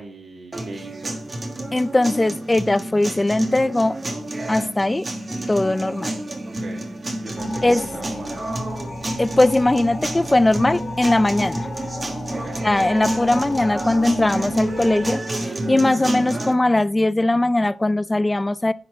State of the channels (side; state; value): both; normal; correlation 0.98